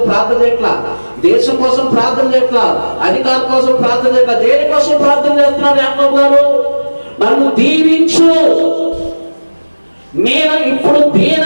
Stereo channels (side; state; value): both; inverted; correlation -1.00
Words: ప్రార్థన చేయట్లా, దేశం కోసం ప్రార్థన చేయట్లా, అధికారం కోసం ప్రార్థన చేయట్లా. దేనికోసం ప్రార్థన చేస్తున్నాడు యాకోబు గారు? నన్ను దీవించు, నేను ఇప్పుడు దీన